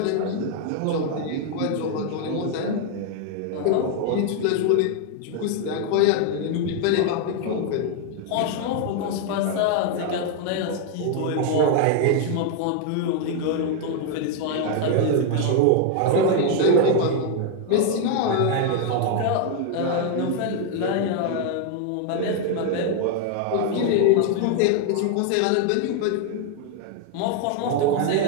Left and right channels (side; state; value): both; different; correlation 0.01